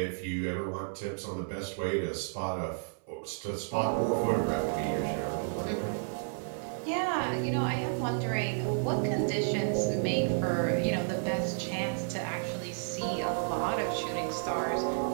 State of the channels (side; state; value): left; silent; 57 dB below the other